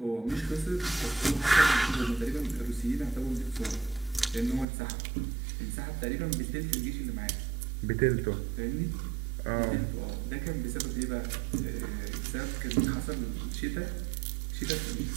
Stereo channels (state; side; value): drops out; left; at 4.7 s